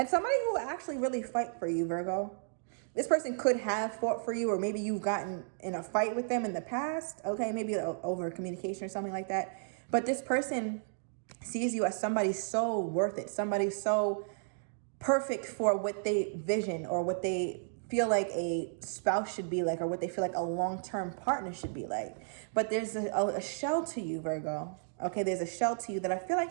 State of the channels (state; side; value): silent; left; digital silence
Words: somebody who will actually really fight for you, Virgo. This person could have fought for you, or maybe you've gotten in a fight with them in the past. Okay, maybe over communication or something like that. But this person sees you as somebody so worth it, somebody so perfect for what they vision or what they feel like a spouse should be like, or what they feel like a long-term partner should be like. But there's a shell to you, Virgo. Okay, there's a shell to you that I feel